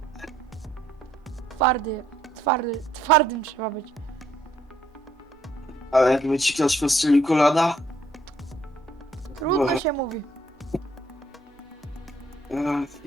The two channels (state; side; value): normal; both; correlation 0.68